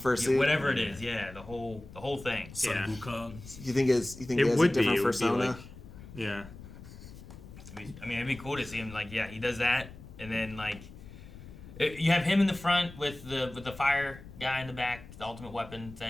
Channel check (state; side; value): noise; left; rumble, 16 dB below the sound